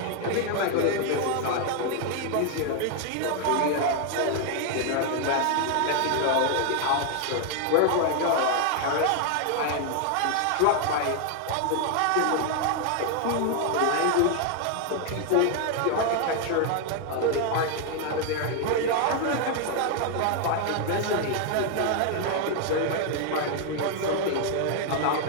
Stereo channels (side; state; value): both; different; correlation 0.00